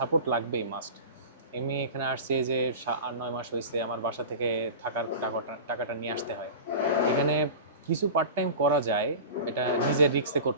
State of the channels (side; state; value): both; inverted; correlation -0.32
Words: লাগবেই, মাস্ট। এমনি এখানে আসছি এই যে ৮-৯ মাস হয়েছে, আমার বাসা থেকে থাকার টাকাটা নিয়ে আসতে হয়। এখানে কিছু পার্ট টাইম করা যায়, এটা নিজের রিস্কে